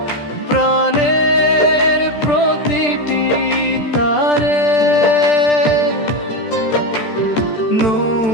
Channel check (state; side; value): late; right; 13 ms